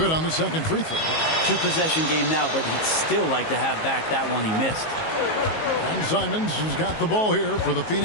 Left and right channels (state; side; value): late; right; 19 ms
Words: on the second free throw. 2-possession game now, but he'd still like to have back that one he missed. And Simons has got the ball here for the